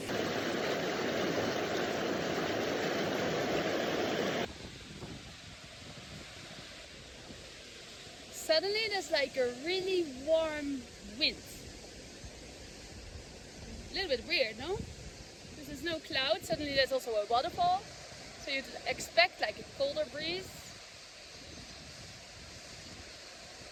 Suddenly there's like a really warm wind. A little bit weird, no? There's no cloud, suddenly there's also a waterfall, so you'd expect like a colder breeze.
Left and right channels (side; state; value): both; identical; correlation 1.00